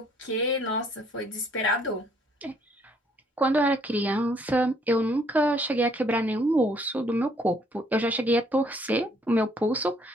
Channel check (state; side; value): normal; both; correlation 0.65